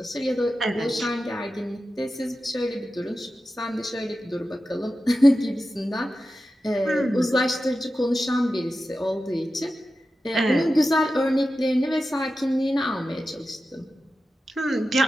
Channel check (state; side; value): normal; both; correlation 0.93